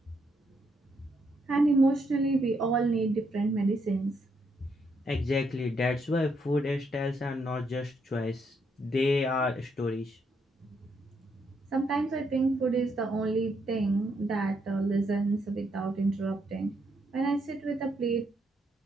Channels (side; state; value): both; normal; correlation 0.76